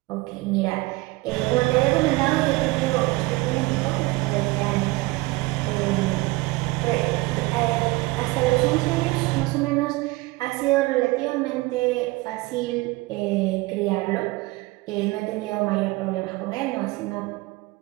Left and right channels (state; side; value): quieter; left; 21.7 dB